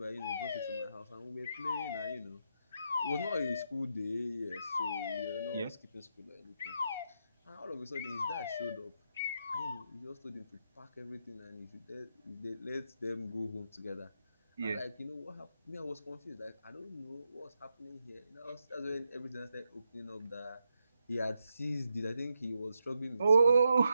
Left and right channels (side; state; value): both; inverted; correlation -0.83